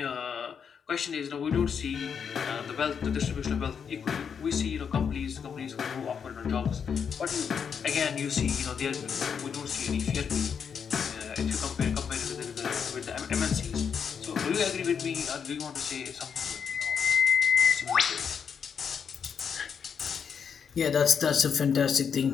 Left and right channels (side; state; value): right; quieter; 7.0 dB